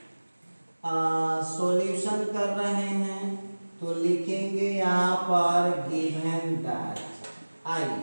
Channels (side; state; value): both; inverted; correlation -1.00